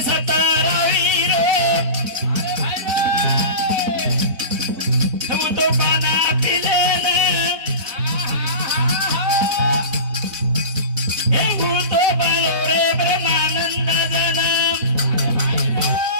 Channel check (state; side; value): late; left; 4.1 ms